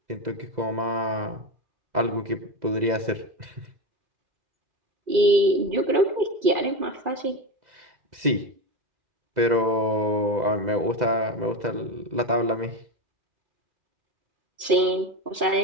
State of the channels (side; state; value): left; late; 2.0 ms